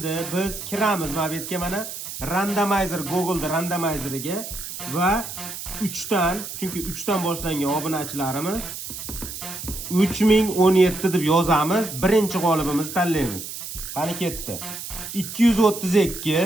biz kiramiz mana bu yerga, mana randomizer, Google'da randomizeriga va 3 dan, chunki 3 dan boshlangan obunachilarimiz 3017 deb yozamiz. Birinchi g'olibimizni tanlaymiz. Qani ketdi.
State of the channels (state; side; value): noise; right; hiss, 9 dB below the sound